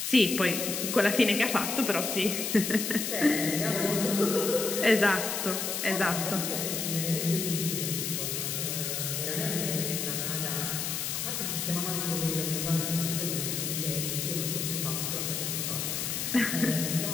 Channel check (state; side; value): noise; left; hiss, 2 dB below the sound